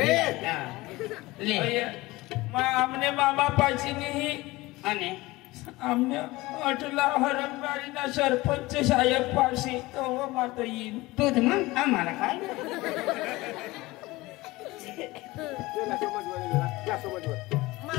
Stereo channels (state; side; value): quieter; right; 20.3 dB